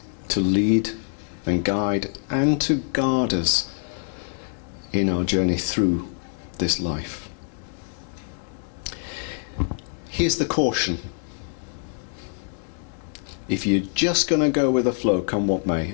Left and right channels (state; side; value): silent; right; digital silence